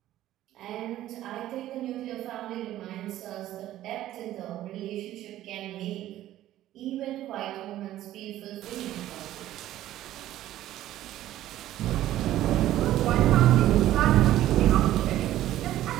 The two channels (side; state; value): left; quieter; 13.7 dB